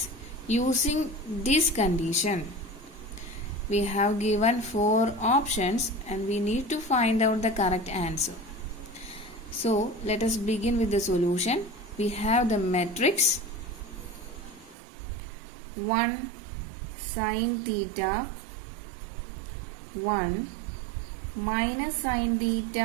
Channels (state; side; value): drops out; left; at 14.8 s